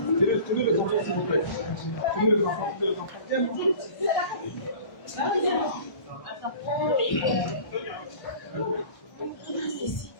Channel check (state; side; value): late; right; 1.3 ms